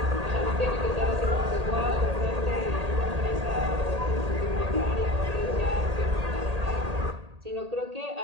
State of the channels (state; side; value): late; left; 1.8 ms